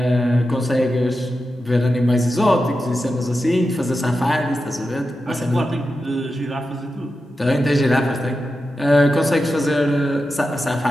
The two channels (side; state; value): both; normal; correlation 0.90